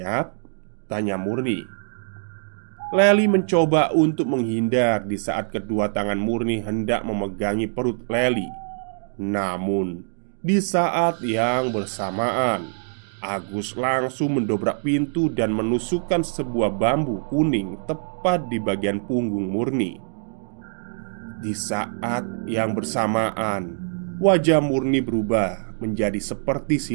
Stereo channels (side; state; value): left; silent; digital silence